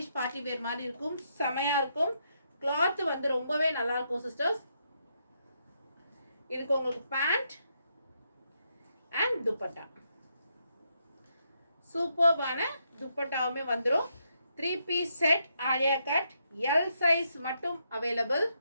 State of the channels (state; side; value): inverted; both; correlation -0.79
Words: பார்ட்டி வேர் மாதிரி இருக்கும், செமையா இருக்கும். கிளாத் வந்து ரொம்பவே நல்லா இருக்கும் சிஸ்டர்ஸ். இதுக்கு உங்களுக்கு பேண்ட் அண்ட் துப்பட்டா, சூப்பர்பான துப்பட்டாவுமே வந்துடும். 3 piece set Alia cut, L size மட்டும் அவைலபிள்.